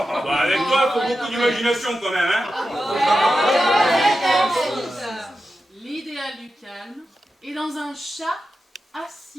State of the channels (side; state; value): both; normal; correlation 0.91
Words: avec toi, faut beaucoup d'imagination quand même, hein. L'idéal du calme est dans un chat